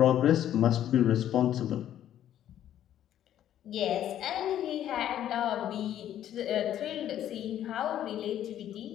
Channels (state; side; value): quieter; right; 11.3 dB